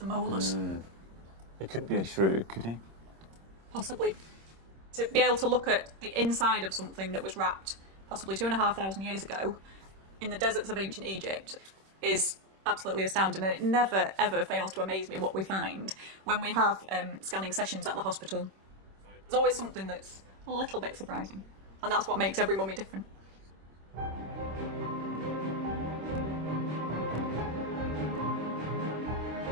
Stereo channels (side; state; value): left; late; 26 ms